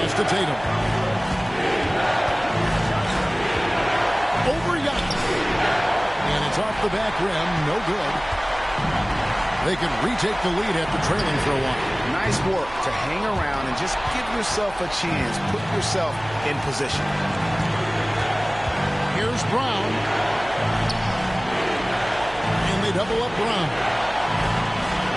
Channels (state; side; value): noise; right; hum, 17 dB below the sound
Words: to Tatum. Over Giannis. And it's off the back rim. No good. They could retake the lead after trailing for a while. Nice work to hang around and just give yourself a chance. Put yourself in position. Here's Brown. And they double up Brown.